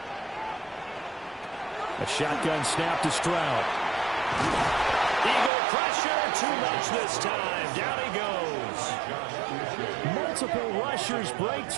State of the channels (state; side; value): drops out; left; at 5.5 s